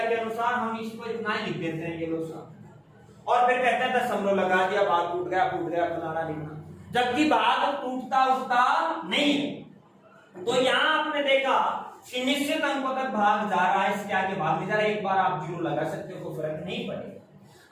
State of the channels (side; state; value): both; identical; correlation 1.00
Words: के अनुसार हम इसको इतना ही लिख देते हैं, ये लोग। और फिर कहते हैं दशमलव लगा दिया, भाग टूट गया फलाना लिखना, जबकि भाग टूटता उठता नहीं है। तो यहां आपने देखा कि निश्चित अंकों तक भाग जा रहा है, इसके आगे भाग नहीं जा रहा। एक बार आप 0 लगा सकते हो, कोई फर्क नहीं पड़ेगा।